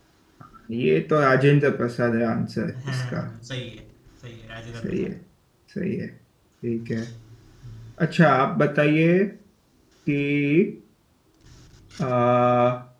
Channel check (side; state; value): both; identical; correlation 1.00